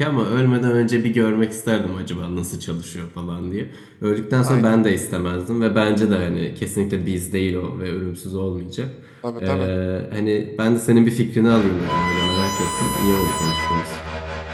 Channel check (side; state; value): both; identical; correlation 1.00